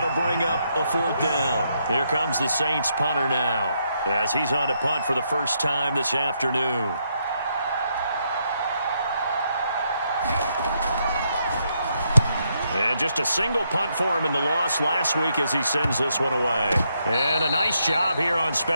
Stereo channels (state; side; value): inverted; both; correlation -0.77